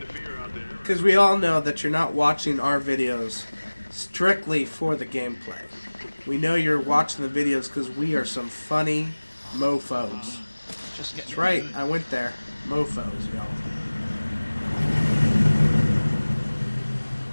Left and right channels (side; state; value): both; inverted; correlation -1.00